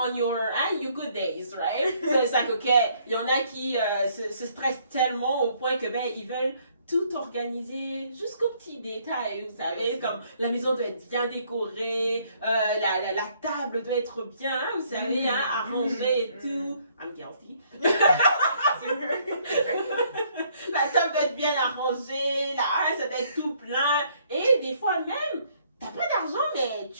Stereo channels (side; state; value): both; inverted; correlation -0.66